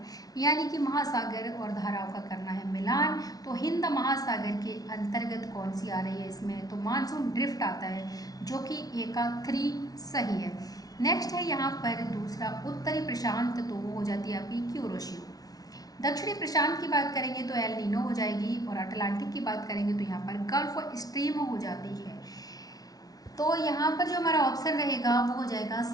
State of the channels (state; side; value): late; right; 0.18 ms